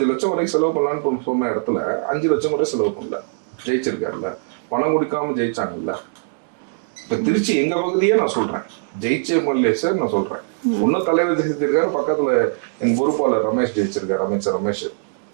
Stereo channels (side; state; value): left; silent; digital silence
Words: லட்சம் வரைக்கும் செலவு பண்ணலான்னு சொன்ன இடத்துல 5 லட்சம் கூட செலவு பண்ணல, ஜெயிச்சிருக்காருல்ல. பணம் கொடுக்காம ஜெயிச்சாங்கல்ல. இப்ப திருச்சி எங்க பகுதியே நான் சொல்றேன், ஜெயிச்ச எம்எல்ஏ சார் நான் சொல்றேன். ஒன்னும் தலைவர் ஜெயிச்சிருக்காரு, பக்கத்துல எங்க பொறுப்பாளர் ரமேஷ் ஜெயிச்சிருக்காரு, அமைச்சர் ரமேஷ்.